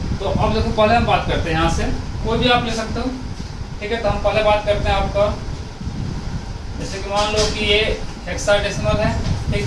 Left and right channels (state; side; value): identical; both; correlation 1.00